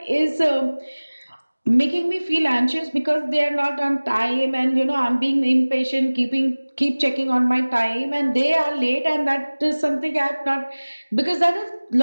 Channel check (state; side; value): inverted; both; correlation -1.00